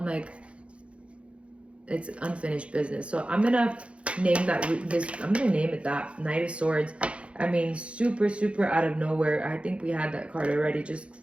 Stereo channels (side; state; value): left; late; 0.060 ms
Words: like, it's unfinished business. So I'm gonna name that I'm gonna name it that, Knight of Swords. I mean, super out of nowhere. I think we had that card already.